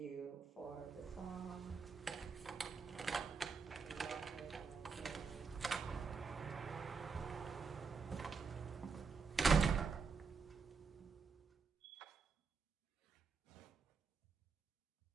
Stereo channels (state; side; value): quieter; left; 5.2 dB